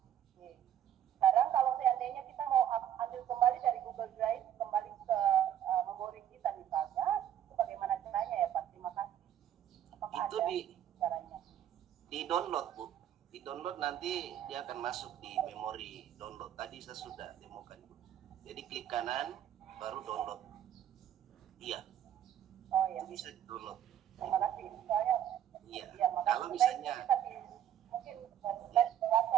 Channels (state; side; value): quieter; left; 10.7 dB